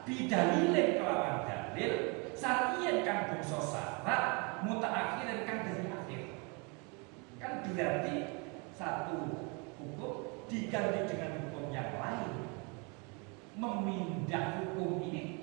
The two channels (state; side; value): quieter; left; 31.7 dB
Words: bidalilin kelawan dalil, syar'iyyin kang bangsa syarat mutaakhirin kang dari akhir. Kan berarti satu hukum diganti dengan hukum yang lain, memindah hukum